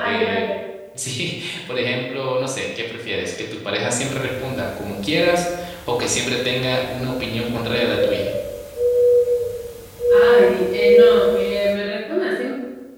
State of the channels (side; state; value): both; identical; correlation 1.00